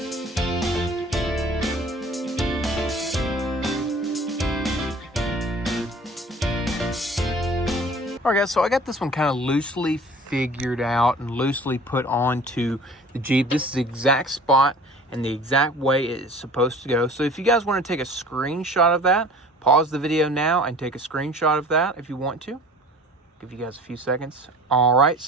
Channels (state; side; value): normal; both; correlation 0.46